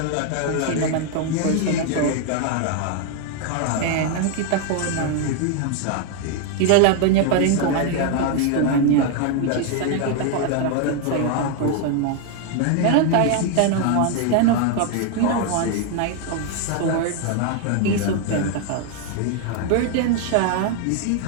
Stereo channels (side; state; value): both; different; correlation 0.01